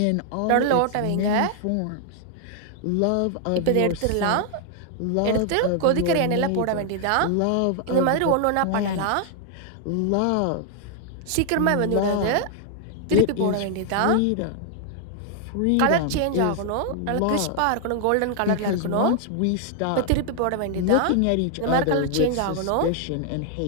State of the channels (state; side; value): different; both; correlation 0.00